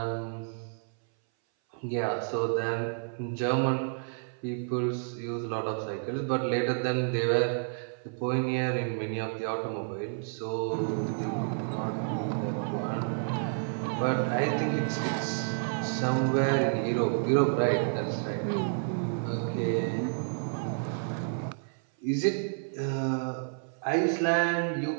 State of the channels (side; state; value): left; silent; 58 dB below the other